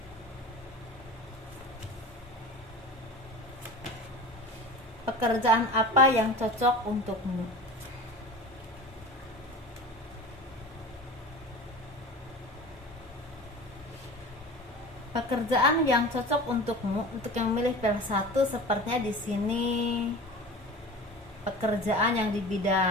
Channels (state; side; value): normal; both; correlation 0.35